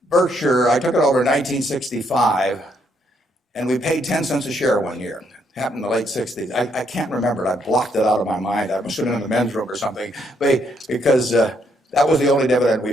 Berkshire, I took it over in 1965, and we paid 10 cents a share one year. It happened in the late 60s. I can't remember it. I blocked it out of my mind. I was sitting in the men's room or something, because that was the only dividend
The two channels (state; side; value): normal; both; correlation 0.73